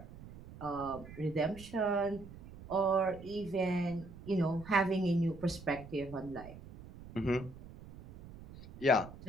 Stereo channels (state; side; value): noise; right; rumble, 16 dB below the sound